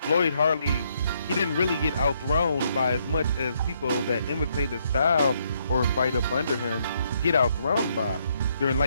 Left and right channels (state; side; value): inverted; both; correlation -0.73